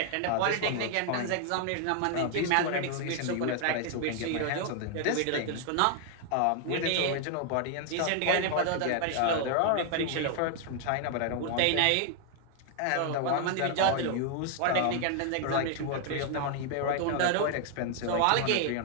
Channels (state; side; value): different; both; correlation 0.00